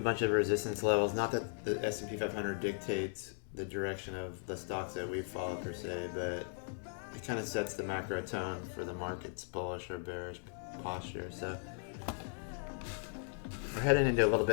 of resistance levels. Not that the S&P 500 dictates the direction of the stocks that we follow per se, but it kind of sets the macro tone for the market's bullish or bearish posture. So we're heading into a little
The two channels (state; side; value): silent; right; 53 dB below the other